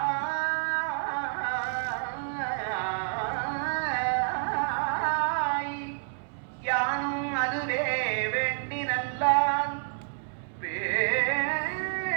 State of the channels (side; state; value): left; silent; 59 dB below the other